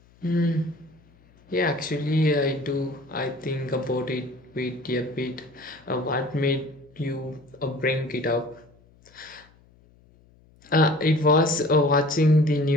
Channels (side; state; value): left; noise; hum, 29 dB below the sound